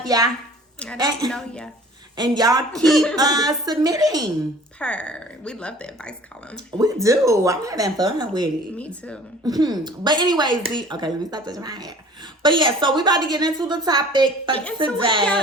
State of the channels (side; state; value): both; normal; correlation 0.48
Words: ya. I don't know ya. And y'all keep submitting. We love the advice column. We do. I'm having fun with it. Me too. But anyways, okay, let me stop touching my hair. But yeah, so we about to get into the topic for